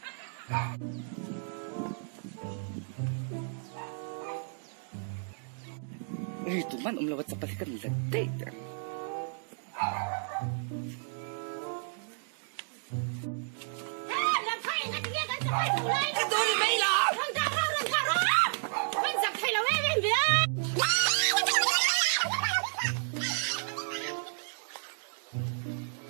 tụi man lawat sa palikan late. Làm thay ngay tiếng anh sẽ phải thủ lên. Cái tôi đi mấy lắm. Run thả ra. Anh giặc thay là em biết.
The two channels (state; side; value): silent; left; 56 dB below the other